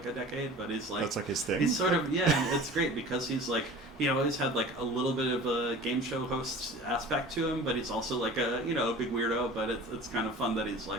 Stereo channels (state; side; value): normal; both; correlation 0.40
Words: a decade, but he's like... That's like his thing? He's sort of, and it's great because he's like, he always had like a little bit of a game show host aspect to him, but he's also like a, you know, a big weirdo, but it's kind of fun that